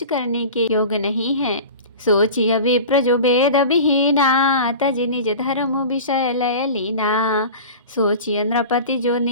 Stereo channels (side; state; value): both; inverted; correlation -0.35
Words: करने के योग्य नहीं है। सोचिय विप्र जो वेद विहीना, तजि निज धर्म विषय लय लीना, सोचिय नृपति जो